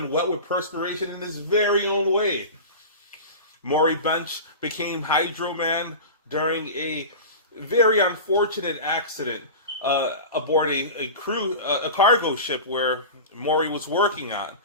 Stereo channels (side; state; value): both; inverted; correlation -0.30